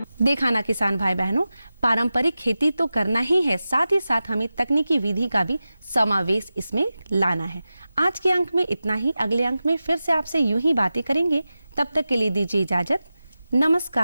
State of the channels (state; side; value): inverted; both; correlation -0.94